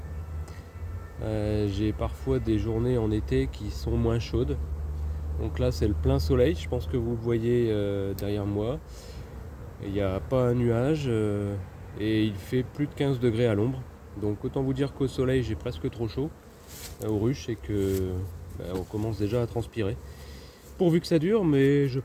J'ai parfois des journées en été qui sont moins chaudes. Donc là c'est le plein soleil, je pense que vous le voyez derrière moi. Il n'y a pas un nuage et il fait plus de 15 degrés à l'ombre. Donc autant vous dire qu'au soleil j'ai presque trop chaud aux ruches et que on commence déjà à transpirer. Pourvu que ça dure, mais je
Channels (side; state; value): both; identical; correlation 1.00